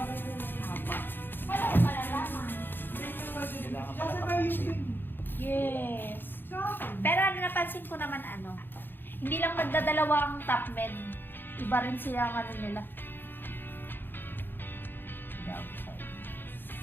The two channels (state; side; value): late; right; 0.098 ms